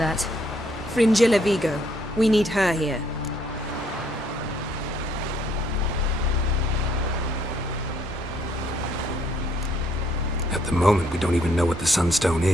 Fringilla Vigo. We need her here. At the moment, we don't even know what the Sunstone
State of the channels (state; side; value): normal; both; correlation 0.68